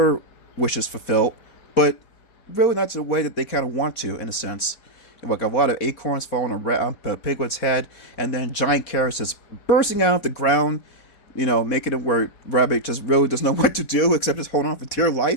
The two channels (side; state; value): right; late; 4.1 ms